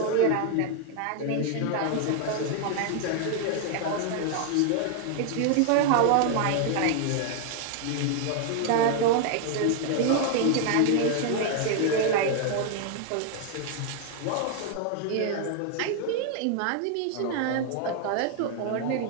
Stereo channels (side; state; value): both; different; correlation 0.00